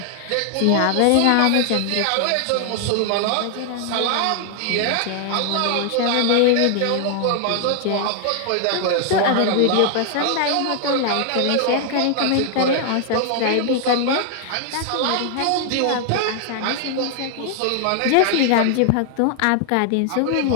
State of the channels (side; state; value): both; different; correlation 0.00